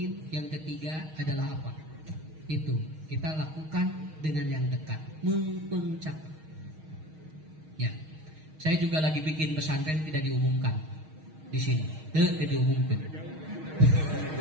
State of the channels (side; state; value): left; late; 6.4 ms